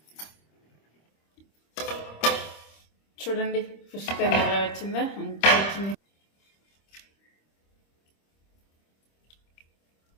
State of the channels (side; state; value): right; late; 26 ms